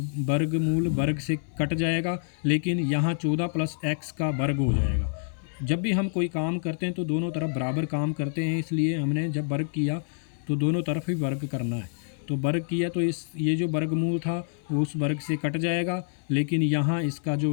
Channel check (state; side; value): silent; right; 57 dB below the other